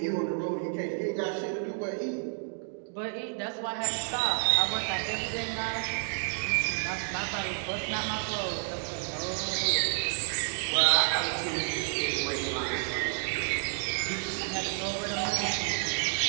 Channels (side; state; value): left; silent; 58 dB below the other